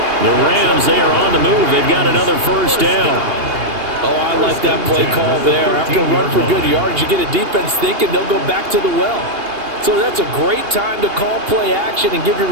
The Rams, they are on the move. They've got another 1st down. Oh, I like that play call there. After a run for good yards, you get a defense thinking they'll go back to the well. So that's a great time to call play action and give your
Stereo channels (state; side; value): late; left; 2.8 ms